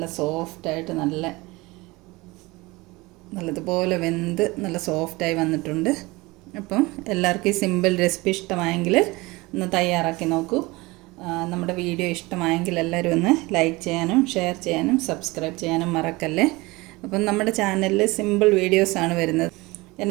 സോഫ്റ്റായിട്ട് നല്ലതുപോലെ വെന്ത് നല്ല സോഫ്റ്റായി വന്നിട്ടുണ്ട്. അപ്പം എല്ലാവർക്കും ഈ സിമ്പിൾ റെസിപ്പി ഇഷ്ടമായെങ്കിൽ ഒന്ന് തയ്യാറാക്കി നോക്കൂ. നമ്മുടെ വീഡിയോ ഇഷ്ടമായെങ്കിൽ എല്ലാവരും ഒന്ന് ലൈക്ക് ചെയ്യാനും ഷെയർ ചെയ്യാനും സബ്സ്ക്രൈബ് ചെയ്യാനും മറക്കല്ലേ. അപ്പം നമ്മുടെ ചാനലിൽ സിമ്പിൾ വീഡിയോസാണ് വരുന്നത്.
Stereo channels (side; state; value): left; quieter; 22.5 dB